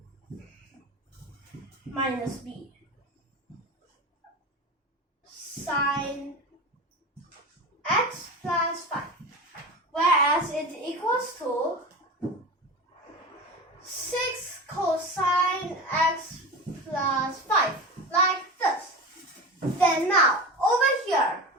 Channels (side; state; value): both; normal; correlation 0.27